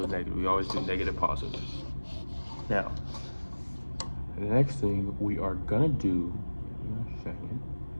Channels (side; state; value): both; inverted; correlation -1.00